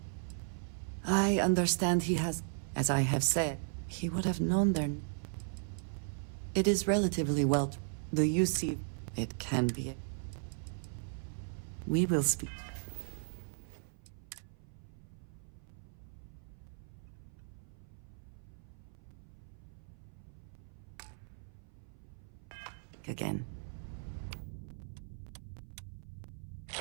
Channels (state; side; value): silent; left; 53 dB below the other